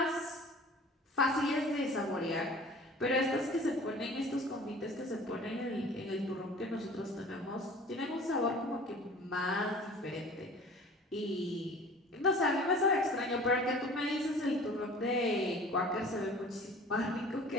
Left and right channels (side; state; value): both; normal; correlation 0.44